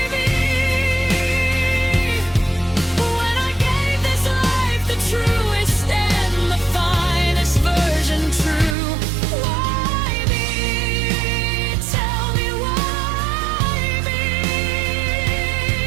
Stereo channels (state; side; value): drops out; left; at 8.8 s